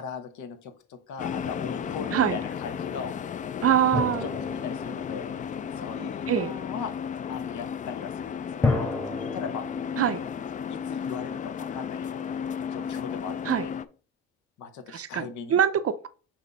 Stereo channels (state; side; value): normal; both; correlation 0.21